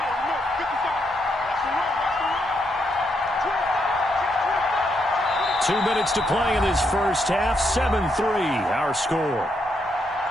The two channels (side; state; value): both; normal; correlation 0.78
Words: Two minutes to play in this first half. 7-3, our score.